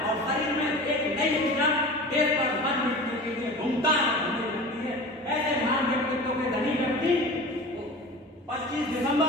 और शरीर में एक नई ऊर्जा देश पर मन मिटने के लिए घूमता है। ऐसे महान व्यक्तित्व के धनी व्यक्ति 25 दिसंबर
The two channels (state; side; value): normal; both; correlation 0.36